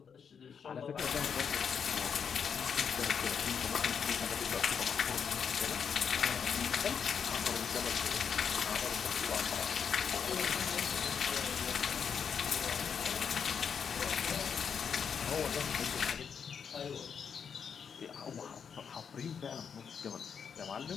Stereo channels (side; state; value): right; quieter; 6.9 dB